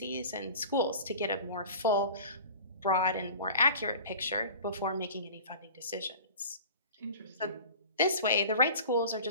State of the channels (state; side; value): inverted; both; correlation -0.41